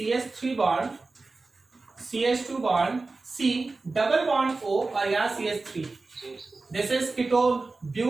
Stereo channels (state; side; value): quieter; left; 3.6 dB